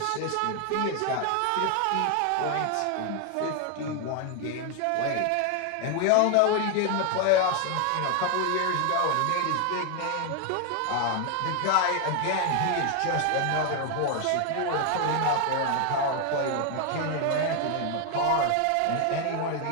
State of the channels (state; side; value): different; both; correlation 0.01